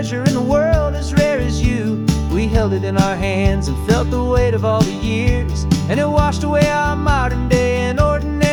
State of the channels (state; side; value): identical; both; correlation 1.00